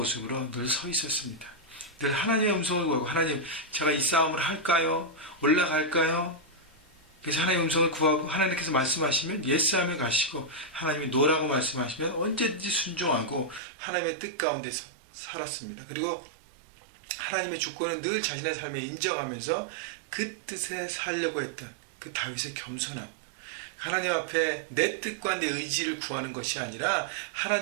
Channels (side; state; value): left; drops out; at 13.6 s